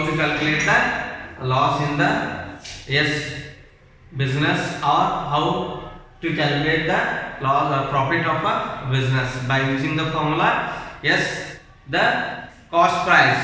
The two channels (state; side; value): identical; both; correlation 1.00